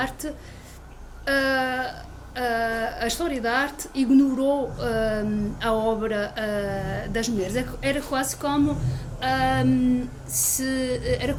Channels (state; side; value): identical; both; correlation 1.00